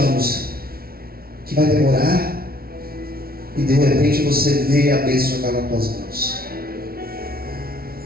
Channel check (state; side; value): late; left; 0.44 ms